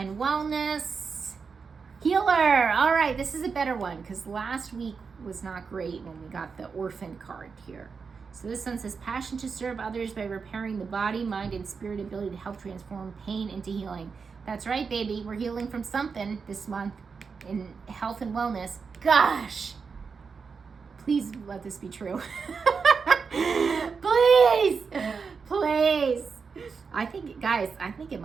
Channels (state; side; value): quieter; left; 5.4 dB